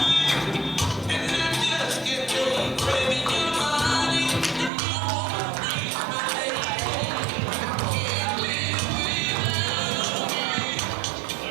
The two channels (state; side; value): drops out; left; at 4.7 s